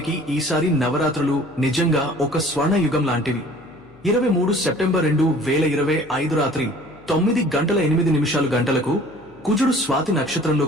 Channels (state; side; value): noise; left; hum, 27 dB below the sound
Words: ఈసారి నవరాత్రులు నిజంగా ఒక స్వర్ణ యుగం లాంటివి. 23 సెప్టెంబర్ 2025 రాత్రి 9:08 కుజుడు స్వాతి